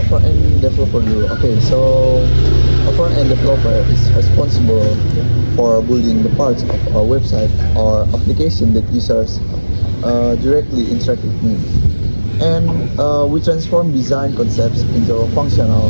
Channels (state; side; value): inverted; both; correlation -1.00